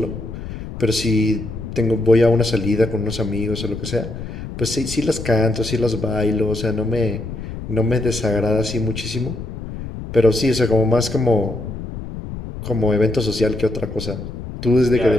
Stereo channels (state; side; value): noise; left; rumble, 9 dB below the sound